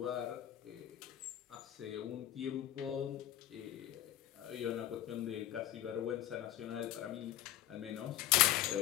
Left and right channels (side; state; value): right; quieter; 12.9 dB